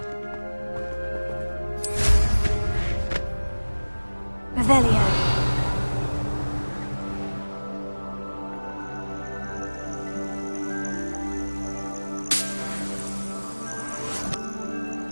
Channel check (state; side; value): inverted; both; correlation -1.00